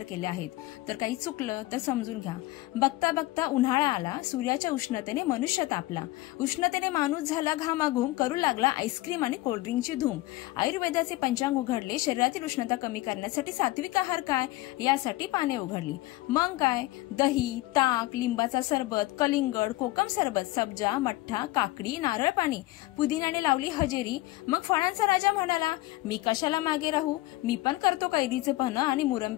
केल्या आहेत, तर काही चुकलं तर समजून घ्या। बघता बघता उन्हाळा आला, सूर्याच्या उष्णतेने मनुष्य तापला, उष्णतेने माणूस झाला घामाघूम, करू लागला आईस्क्रीम आणि कोल्ड्रिंकची धूम। आयुर्वेदाचे पंचांग उघडले, शरीरातील उष्णता कमी करण्यासाठी सात्विक आहार काय यासाठी पाने उघडली। मग काय, दही, ताक, लिंबाचा सरबत, कलिंगड, कोकम सरबत, सब्जा, मठ्ठा, काकडी, नारळ पाणी, पुदिन्याने लावली हजेरी। मग फळांचा राजा म्हणाला, मी कशाला मागे राहू, मी पण करतो कैरीचे पन्ह आणि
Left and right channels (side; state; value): right; quieter; 18.5 dB